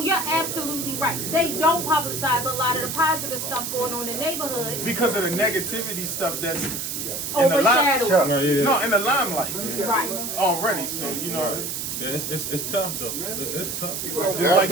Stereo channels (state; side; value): noise; right; hiss, 4 dB below the sound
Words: you're absolutely right. They don't publicize a lot of the positive stuff going on in the neighborhood. Because of the negativity stuff that's in the Overshadowed. limelight. No, in the limelight Right. already. So you know, Yeah, it's tough though. It's tough. Just like